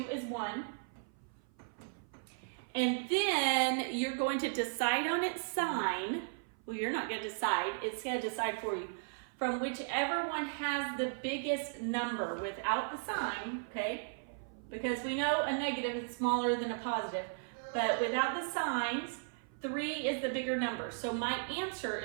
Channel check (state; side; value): silent; left; 54 dB below the other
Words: is 1. And then you're going to decide on its sign. Well, you're not going to decide. It's going to decide for you. From whichever one has the biggest number without the sign, okay? Because we know a negative is smaller than a positive. But without the signs, 3 is the bigger number. So my answer